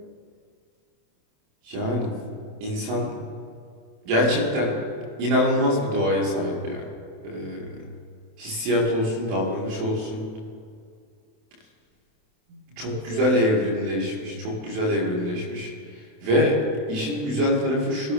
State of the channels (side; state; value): left; late; 27 ms